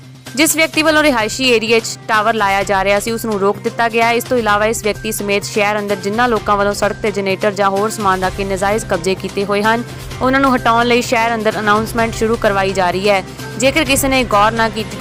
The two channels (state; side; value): identical; both; correlation 1.00